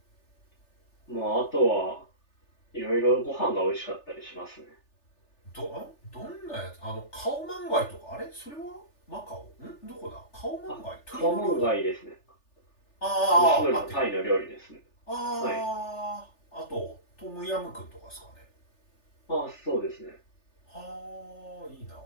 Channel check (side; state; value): right; late; 3.4 ms